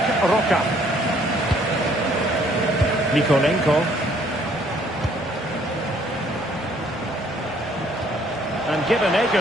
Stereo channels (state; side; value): normal; both; correlation 0.62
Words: Roca. Nikolenko. And given